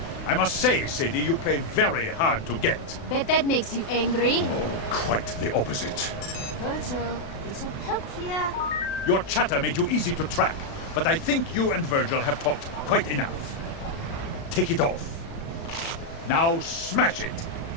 I must say, Sadie, you play very hard to get. Bet that makes you angry. Quite the opposite. Virgil, a little help here. Your chatter made you easy to track, but I think you and Virgil have talked quite enough. Take it off. Now smash it.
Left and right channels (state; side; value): late; right; 36 ms